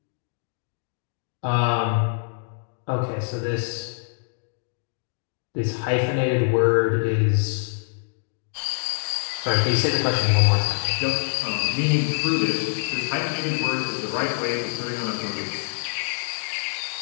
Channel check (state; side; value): silent; right; digital silence